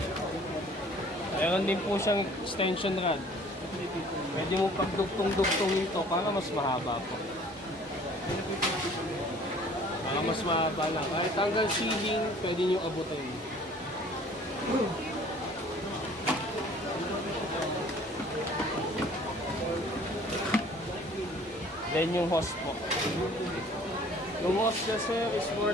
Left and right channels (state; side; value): normal; both; correlation 0.52